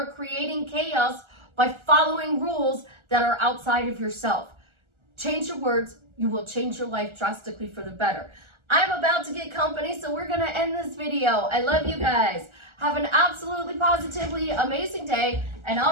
creating chaos by following rules that are outside of yourself. Change your words, you will change your life drastically for the better. I'm about to get company, so we're going to end this video. I love you guys. Have an absolutely positively amazing day. And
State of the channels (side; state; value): left; late; 1.4 ms